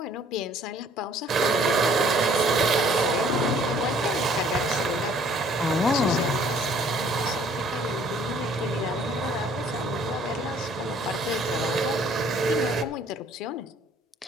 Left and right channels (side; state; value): both; normal; correlation 0.58